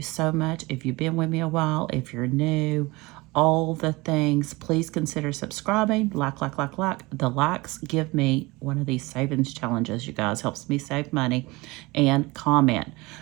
so much. If you've been with me a while, if you're new, all the things, please consider subscribing. Like. The likes give me one of these savings challenges, you guys. Helps me save money. And comment.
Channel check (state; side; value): quieter; left; 22.8 dB